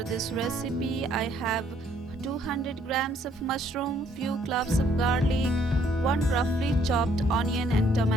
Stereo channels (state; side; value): normal; both; correlation 0.65